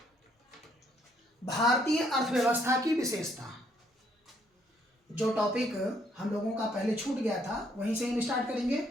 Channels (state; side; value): normal; both; correlation 0.69